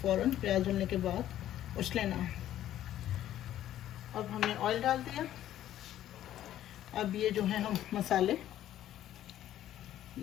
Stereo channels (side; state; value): right; quieter; 12.3 dB